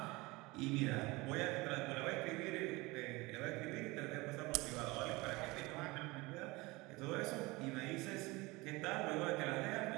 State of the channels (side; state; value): left; quieter; 23.0 dB